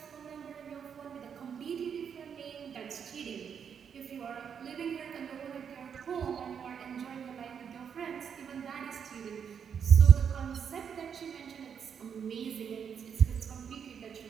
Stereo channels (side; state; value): left; quieter; 7.4 dB